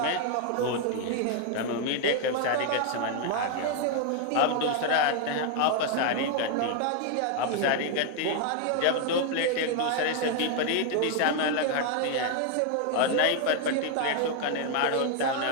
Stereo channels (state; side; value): different; both; correlation 0.00